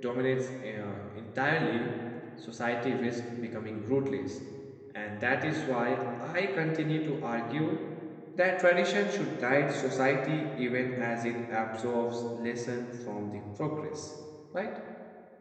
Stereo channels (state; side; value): identical; both; correlation 1.00